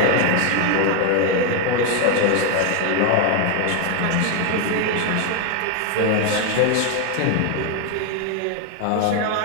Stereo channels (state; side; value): different; both; correlation 0.01